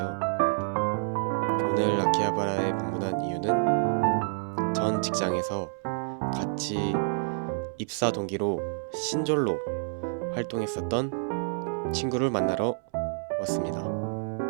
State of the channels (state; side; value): silent; left; 59 dB below the other